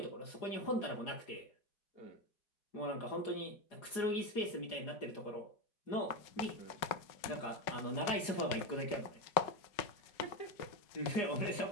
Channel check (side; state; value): right; late; 4.9 ms